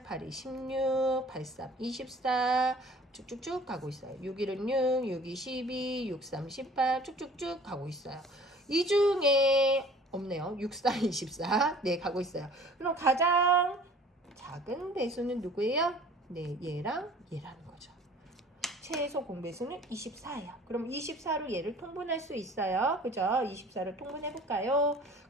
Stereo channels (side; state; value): both; normal; correlation 0.49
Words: 8이 16, 8, 3, 24 쭉쭉쭉 가고 있어요. 6, 1은 6, 6, 2, 12, 6, 3, 18 쭉쭉쭉 가고 있어요. 이 중에 없네요. 6, 4, 24 네, 가고 있어요. 그럼 가장 작은 배수는 누구예요? 네, 얘랑 얘라는 거죠. 최소 공배수는 24예요. 그럼 24로 얘를 통분할 수 있어요. 그죠? 24를 통분해볼까요?